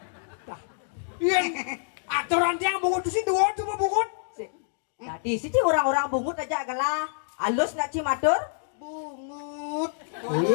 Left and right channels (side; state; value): right; silent; digital silence